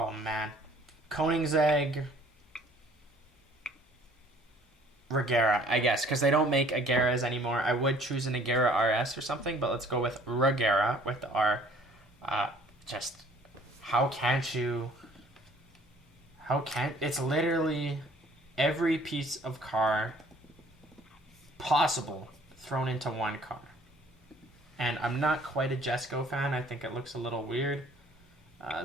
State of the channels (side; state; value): both; normal; correlation 0.56